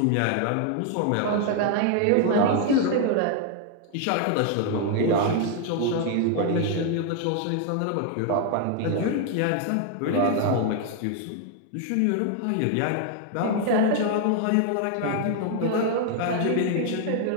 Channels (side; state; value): both; different; correlation 0.00